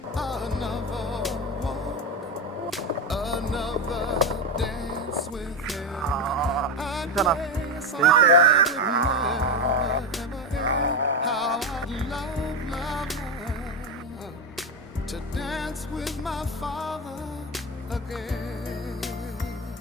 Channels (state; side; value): normal; both; correlation 0.15